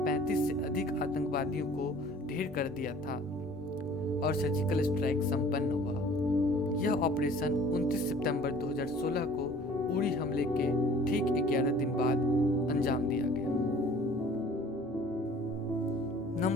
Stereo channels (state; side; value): normal; both; correlation 0.50